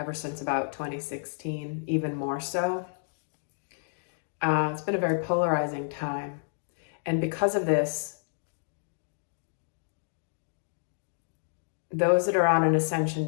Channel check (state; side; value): silent; right; digital silence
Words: since about 2016, even more so. It's been a very polarizing time. And because of this, those that are on an